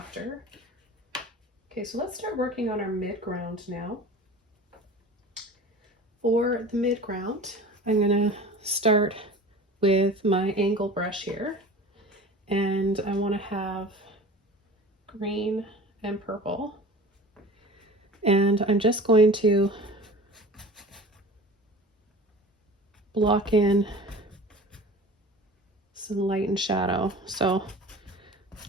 Okay, so let's start working on our midground now. For the midground, I'm going to start with my angle brush here, and I want to have green and purple, and I'm just going to block in some light and shadow. So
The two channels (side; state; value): both; normal; correlation 0.39